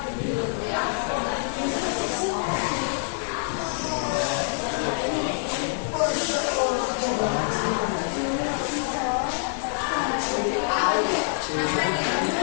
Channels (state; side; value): silent; right; 61 dB below the other